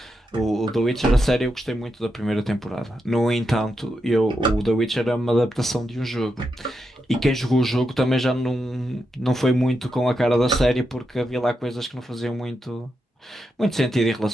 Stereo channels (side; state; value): both; normal; correlation 0.85